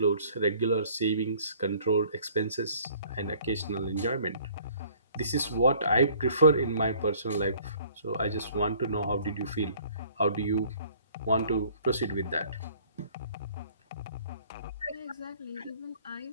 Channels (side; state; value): both; inverted; correlation -0.56